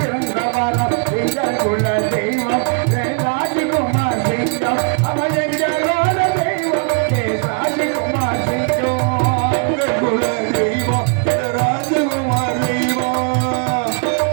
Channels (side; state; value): left; quieter; 38.2 dB